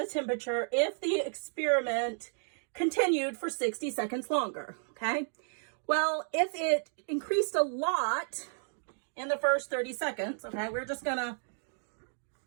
temperature if the experiment continued for 60 seconds longer, okay? Well, if it increased a lot in the first 30 seconds, okay, we're just gonna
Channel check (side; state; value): left; silent; digital silence